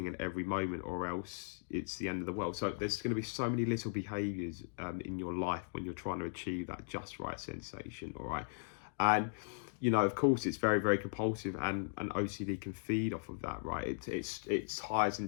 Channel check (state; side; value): silent; right; digital silence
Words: at every moment, or else it's the end of the world. So there's going to be so many little behaviors in your life when you're trying to achieve that just right sensation. All right. And of course, it's very, very compulsive, and OCD can feed off of that, right? It ties